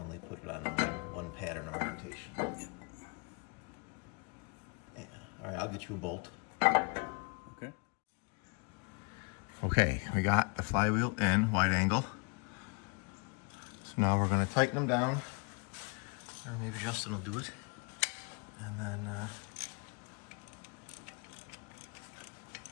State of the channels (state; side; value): quieter; right; 32.2 dB